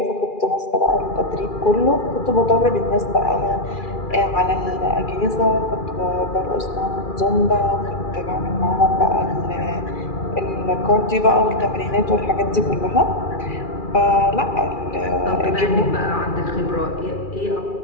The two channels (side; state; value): right; late; 2.4 ms